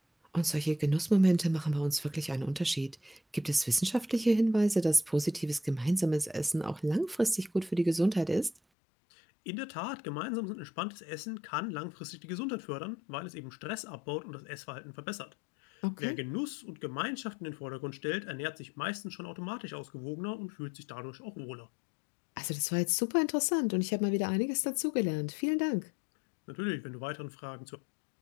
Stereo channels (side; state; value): right; drops out; at 8.6 s